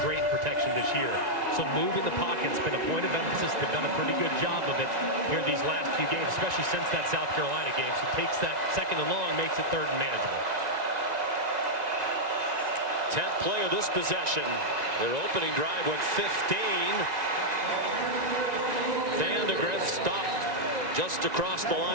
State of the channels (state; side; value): late; left; 1.9 ms